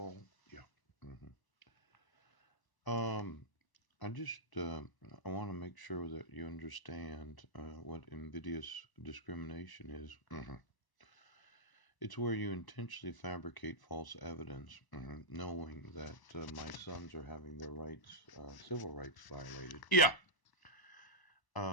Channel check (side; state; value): right; late; 1.0 ms